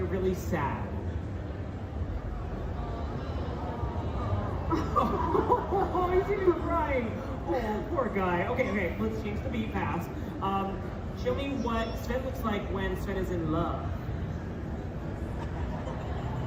really sad? Oh, he's even crying. Oh, poor guy. Okay, let's change the beat fast. Show me what Sven looks like when Sven is in love.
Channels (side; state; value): both; identical; correlation 1.00